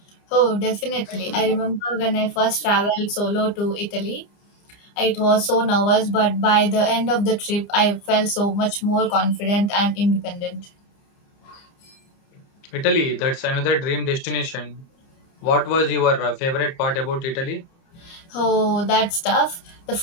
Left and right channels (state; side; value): late; right; 29 ms